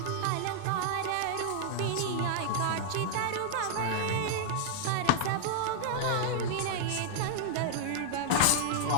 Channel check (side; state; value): both; different; correlation -0.01